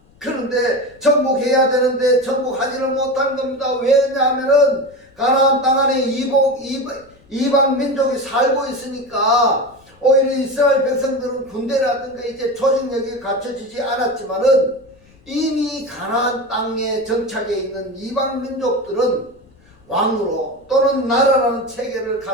그런데 정복해야 되는데 정복하지를 못한 겁니다. 왜냐하면은 가나안 땅 안에 이방 민족이 살고 있으니까 오히려 이스라엘 백성들은 군대라든가 이제 조직력이 갖춰지지 않았지만은 이미 가나안 땅에 정착해 있는 이방 민족들은 왕으로 또는 나라라는 체계를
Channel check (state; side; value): noise; left; rumble, 29 dB below the sound